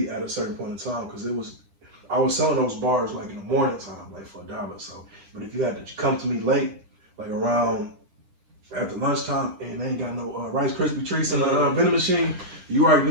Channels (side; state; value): left; late; 9.9 ms